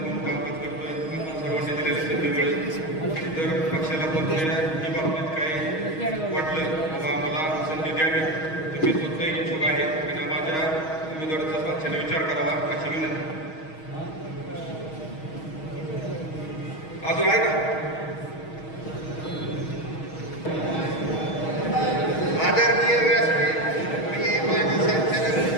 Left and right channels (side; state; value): right; late; 6.3 ms